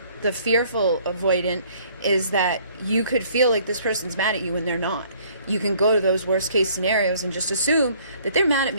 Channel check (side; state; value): both; inverted; correlation -0.59